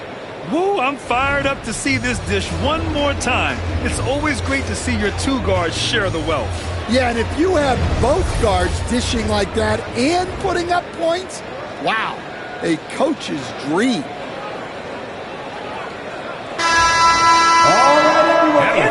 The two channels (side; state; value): both; identical; correlation 1.00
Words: Woo, I'm fired up to see this dish one more time. It's always great to see your 2 guards share the wealth. Yeah, and if you have both guards dishing like that and putting up points, wow, a coach's dream. And